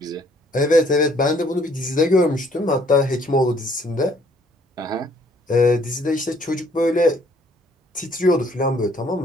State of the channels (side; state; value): both; normal; correlation 0.63